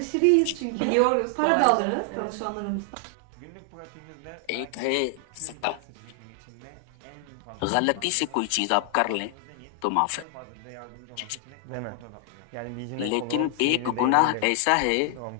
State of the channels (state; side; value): different; both; correlation 0.00